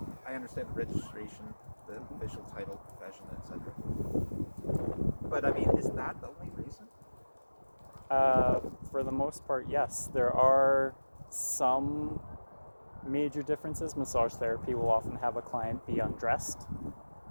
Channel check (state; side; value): inverted; both; correlation -1.00